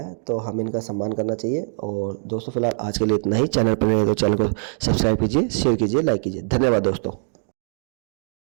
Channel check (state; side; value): silent; left; digital silence